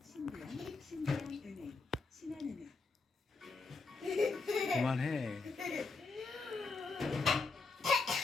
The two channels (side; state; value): right; quieter; 4.2 dB